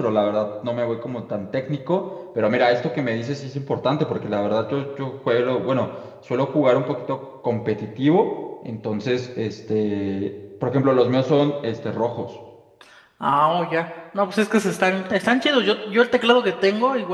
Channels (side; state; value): both; identical; correlation 1.00